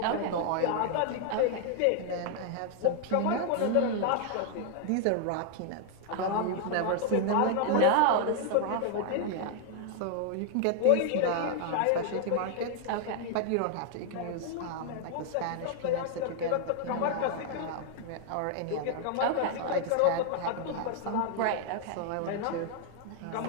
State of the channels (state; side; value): different; both; correlation 0.00